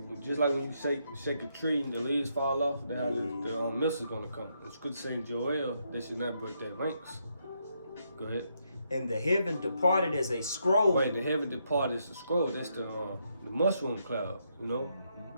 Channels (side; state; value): both; inverted; correlation -0.78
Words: Just like when you shake a tree and the leaves fall off, that's how the missiles gonna come. The scripture saying Joel, they should not break their ranks. Go ahead. and the heaven departed as a scroll. Right, the heaven departed is the scroll. That's the mushroom cloud. Go